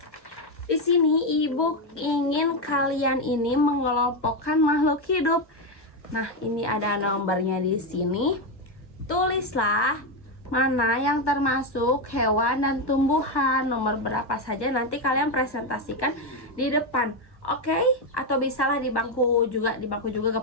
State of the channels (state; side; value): late; right; 1.1 ms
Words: Di sini ibu ingin kalian ini mengelompokkan makhluk hidup. Nah, ini ada nomornya di sini. Tulislah mana yang termasuk hewan dan tumbuhan. Nomor berapa saja nanti kalian presentasikan di depan. Oke? Atau bisalah di bangku juga